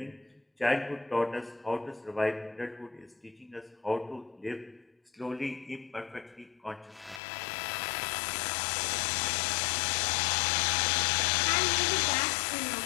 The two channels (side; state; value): right; drops out; at 7.2 s